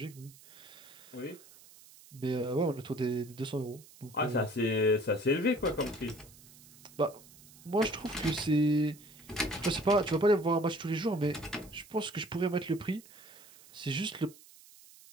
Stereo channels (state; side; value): noise; right; hiss, 22 dB below the sound